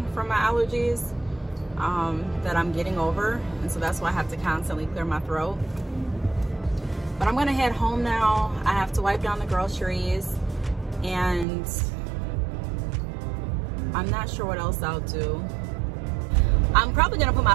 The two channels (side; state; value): left; drops out; at 11.5 s